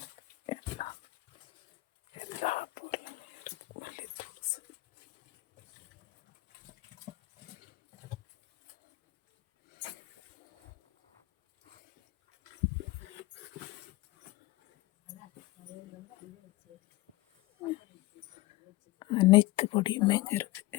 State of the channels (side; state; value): right; quieter; 19.9 dB